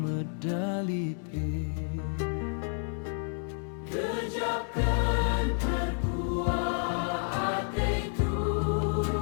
Gejapkan terkuat hati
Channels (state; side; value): silent; right; 57 dB below the other